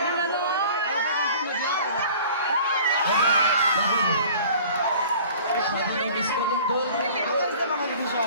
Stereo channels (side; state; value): both; inverted; correlation -0.47